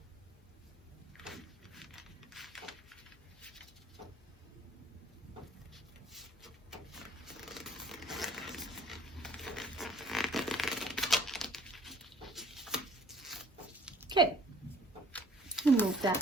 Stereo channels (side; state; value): both; normal; correlation 0.55